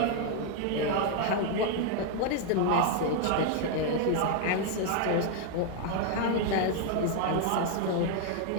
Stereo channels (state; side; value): different; both; correlation 0.00